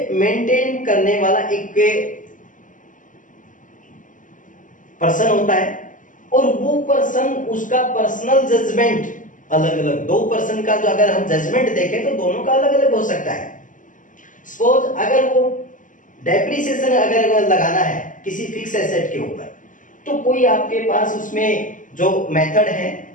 मेंटेन करने वाला एक पर्सन होता है और वो पर्सन उसका पर्सनल जजमेंट अलग अलग, दो पर्सन का जो अगर हम जजमेंट देखें तो दोनों का अलग अलग हो सकता है। सपोज अगर वो डेप्रिसिएशन अगर लगाना है किसी फिक्स एसेट के ऊपर, तो कोई आपके पास उसमें जो मेथड है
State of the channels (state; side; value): late; right; 0.38 ms